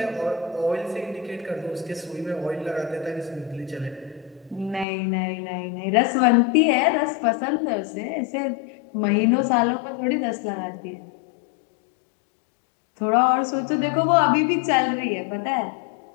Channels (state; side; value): drops out; right; at 4.9 s